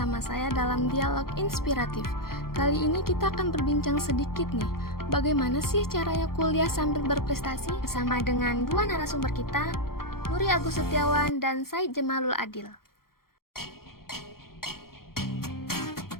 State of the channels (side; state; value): right; late; 0.93 ms